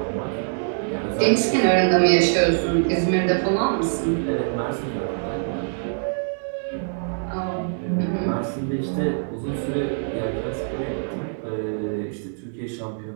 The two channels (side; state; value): left; silent; 63 dB below the other